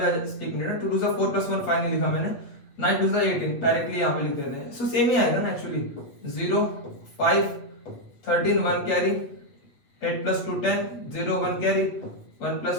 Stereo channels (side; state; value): right; late; 8.1 ms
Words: एक मिनट 2 2 जा 4 प्लस 1 5 नहीं लिखा मैंने, 9 2 जा 18 डायरेक्टली यहाँ पे लिख देते हैं, सो सेम ही आएगा ना actually, 0 5 13 1 carry, 8 plus 2 10, 0 1 carry, 1 plus